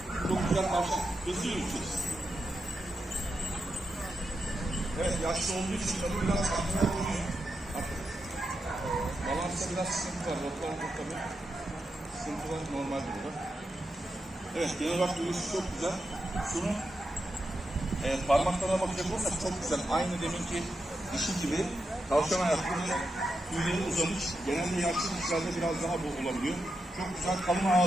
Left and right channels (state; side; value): normal; both; correlation 0.87